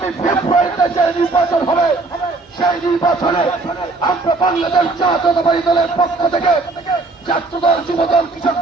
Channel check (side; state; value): left; quieter; 3.5 dB